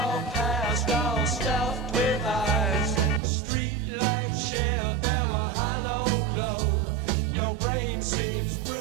past, all stuffed with eyes. Street lights share their hollow glow. Your brain seems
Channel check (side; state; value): left; drops out; at 3.2 s